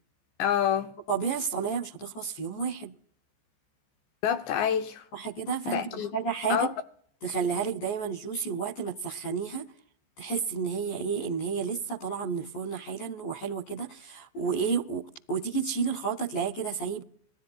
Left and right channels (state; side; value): late; right; 14 ms